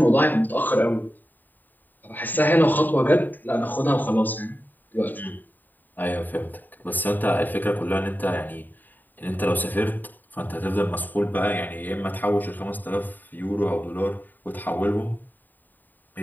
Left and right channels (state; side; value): late; right; 0.088 ms